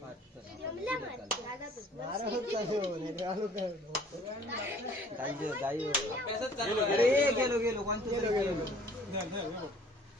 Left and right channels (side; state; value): both; normal; correlation 0.54